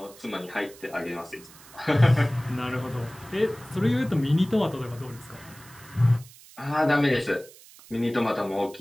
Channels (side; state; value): right; noise; hiss, 21 dB below the sound